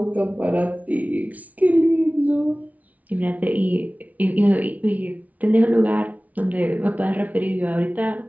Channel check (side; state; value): left; late; 0.071 ms